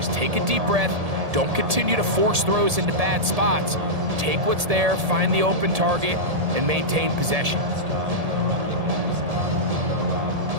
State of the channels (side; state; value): left; late; 1.7 ms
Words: take a deep breath. Don't continue to force throws into bad spots. Take what's there, find the open target, and maintain possession.